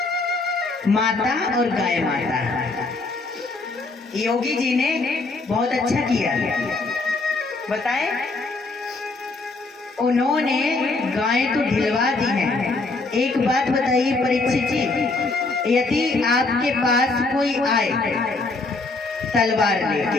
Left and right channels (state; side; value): quieter; right; 3.5 dB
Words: माता और गाय माता। योगी जी ने बहुत अच्छा किया, बताएं, उन्होंने गाय तो ढिलवा दी है। एक बात बताइए परीक्षित जी, यदि आपके पास कोई आए तलवार